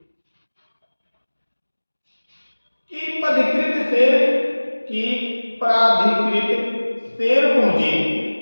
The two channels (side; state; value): both; inverted; correlation -1.00